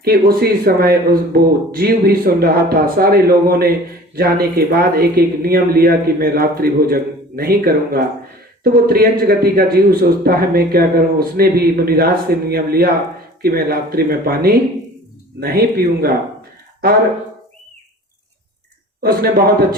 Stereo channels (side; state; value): both; normal; correlation 0.45